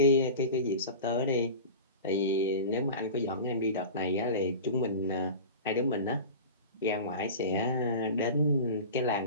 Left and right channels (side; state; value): both; inverted; correlation -0.32